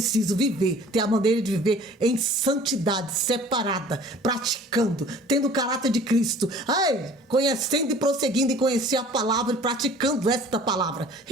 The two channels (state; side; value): normal; both; correlation 0.48